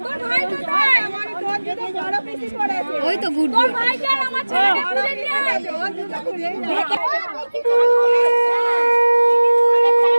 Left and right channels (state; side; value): inverted; both; correlation -1.00